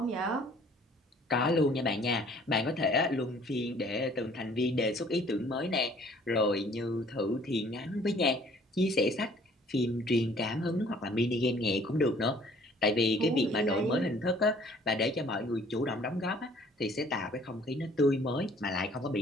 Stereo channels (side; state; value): both; normal; correlation 0.56